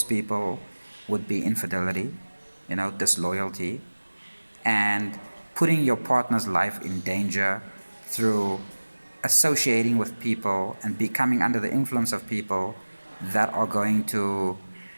people would be infidelity, you know, disloyalty, and putting your partner's life in danger through associating with people and becoming under the influence of people that are going to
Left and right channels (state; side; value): inverted; both; correlation -1.00